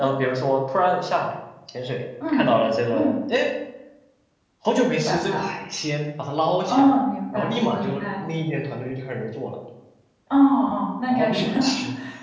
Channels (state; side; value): identical; both; correlation 1.00